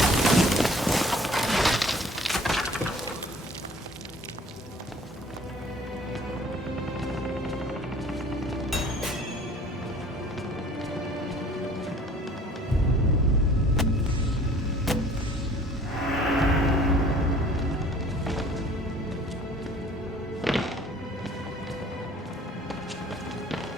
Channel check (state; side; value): normal; both; correlation 0.51